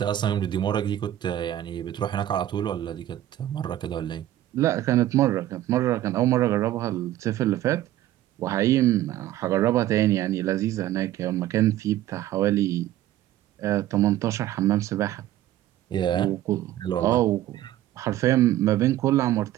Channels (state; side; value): quieter; left; 13.5 dB